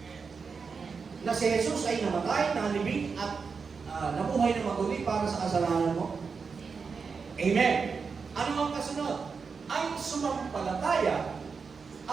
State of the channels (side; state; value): left; quieter; 5.3 dB